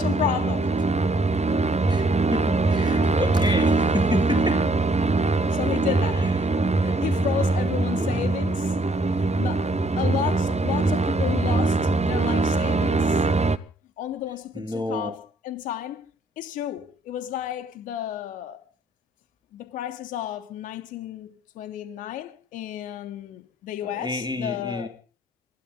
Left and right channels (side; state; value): both; normal; correlation 0.65